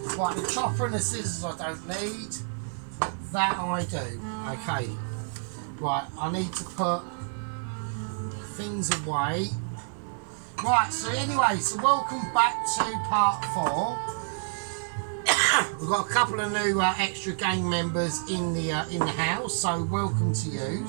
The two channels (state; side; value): silent; left; digital silence